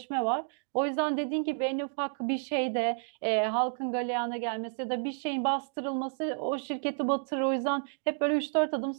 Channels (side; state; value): left; silent; 57 dB below the other